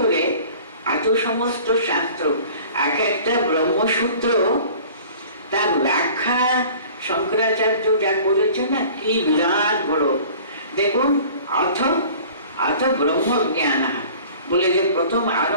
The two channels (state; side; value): inverted; both; correlation -0.46